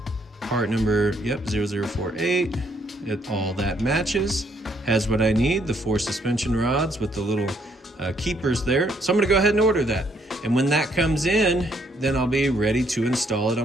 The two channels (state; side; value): normal; both; correlation 0.69